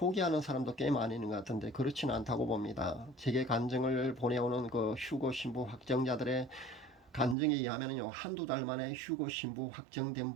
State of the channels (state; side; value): drops out; left; at 7.4 s